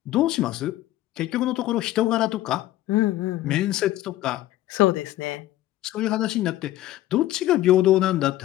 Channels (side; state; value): right; quieter; 14.9 dB